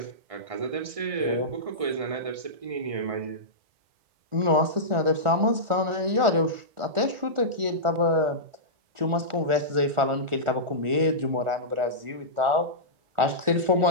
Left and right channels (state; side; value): late; left; 1.4 ms